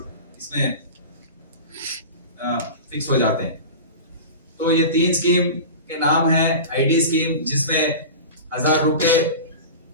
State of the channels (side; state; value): both; inverted; correlation -0.32